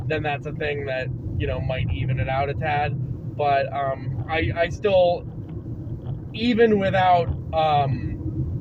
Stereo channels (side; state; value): both; identical; correlation 1.00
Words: then that's a thing that, you know, might even it out a tad. But I still, even without